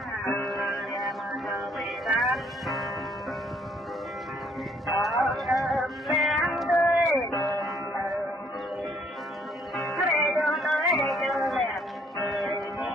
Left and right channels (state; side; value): normal; both; correlation 0.64